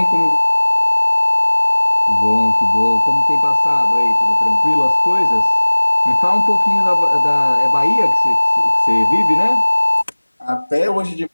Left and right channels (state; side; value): inverted; both; correlation -1.00